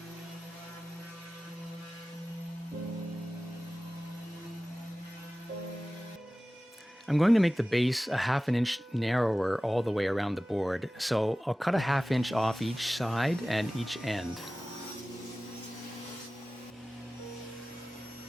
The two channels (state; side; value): normal; both; correlation 0.97